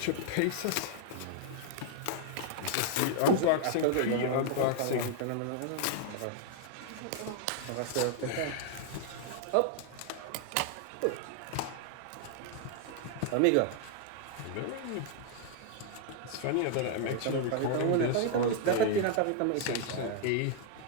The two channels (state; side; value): different; both; correlation 0.00